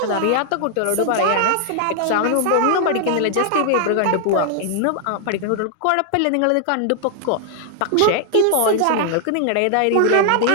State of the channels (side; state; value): both; different; correlation 0.00